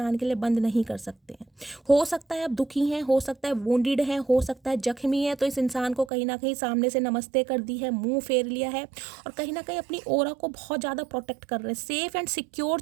के लिए बंद नहीं कर सकते हैं। हो सकता है आप दुखी हैं, हो सकता है वुंडेड हैं, हो सकता है जख्मी है, तो इस इंसान को कहीं ना कहीं सामने से नमस्ते कर दी है, मुंह फेर लिया है, और कहीं ना कहीं अपनी ऑरा को बहुत ज़्यादा प्रोटेक्ट कर रहे हैं, सेफ एंड सिक्योर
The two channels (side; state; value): left; drops out; at 6.1 s